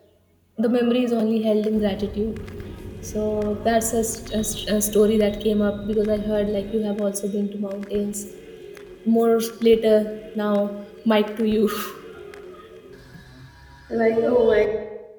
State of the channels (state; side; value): identical; both; correlation 1.00